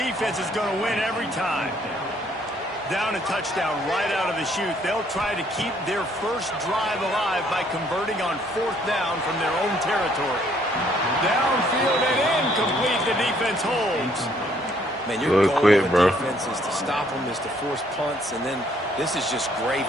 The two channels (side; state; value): both; normal; correlation 0.65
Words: is going to win every time. Down a touchdown right out of the chute. They'll try to keep their first drive alive by converting on 4th down from their own territory. Downfield and incomplete. The defense holds. Man, your goal of the defense is to stop them, is to force punts, and then this is just